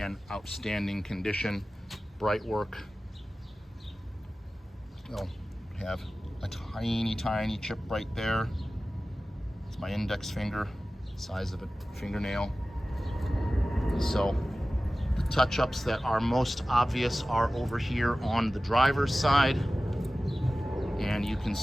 outstanding condition, bright work. You'll have a tiny, tiny chip right there. It's my index finger, size of a fingernail. So the touch-ups that are most obvious are over here on the driver's side. And you can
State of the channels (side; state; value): both; normal; correlation 0.96